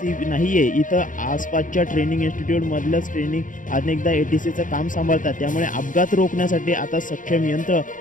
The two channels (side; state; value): right; late; 0.38 ms